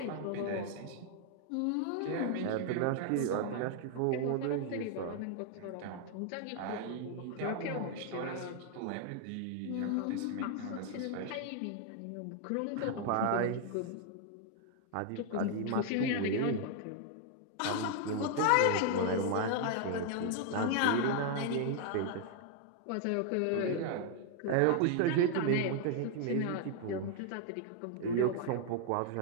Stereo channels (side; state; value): both; different; correlation 0.00